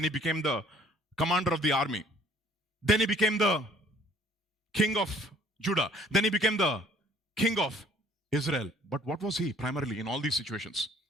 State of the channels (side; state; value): both; normal; correlation 0.57